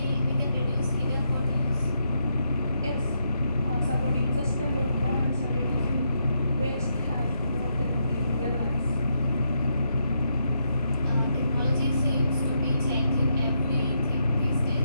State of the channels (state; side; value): inverted; both; correlation -0.80